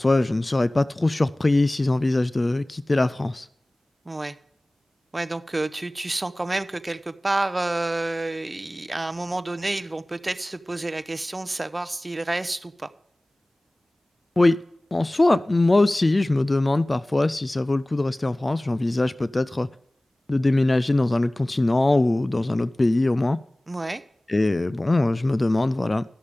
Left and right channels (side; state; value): both; normal; correlation 0.98